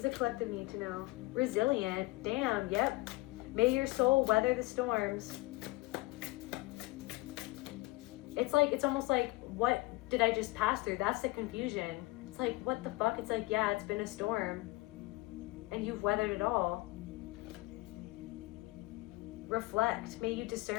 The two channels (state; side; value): quieter; right; 21.8 dB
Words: the collective need to know? Resilient. Damn, yep. May your soul weather the storms. It's almost like, what did I just pass through? That's the confusion. It's like, what the fuck? It's like, yeah, it's been a storm. And you've weathered it all. Reflect. May you